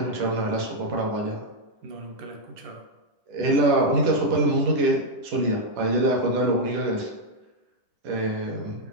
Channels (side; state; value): left; late; 10 ms